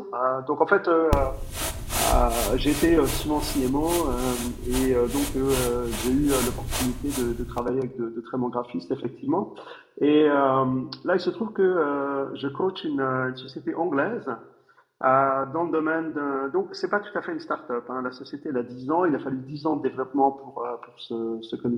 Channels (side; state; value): both; identical; correlation 1.00